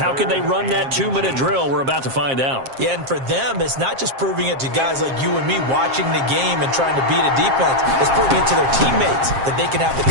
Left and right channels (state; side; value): late; left; 7.5 ms